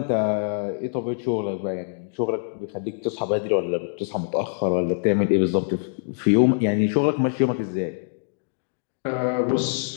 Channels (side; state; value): right; silent; digital silence